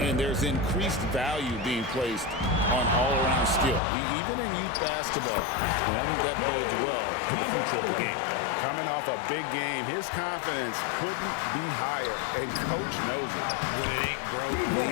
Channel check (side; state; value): right; drops out; at 3.8 s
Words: And there's increased value being placed on all-around skill, even in youth basketball. And I think that bodes well for the future of the game. Coming off a big game, his confidence couldn't be higher, and Coach knows it. When it ain't broke,